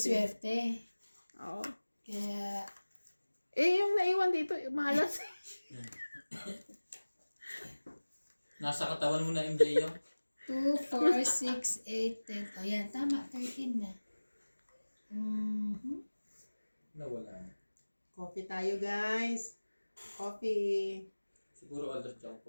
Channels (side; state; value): both; inverted; correlation -1.00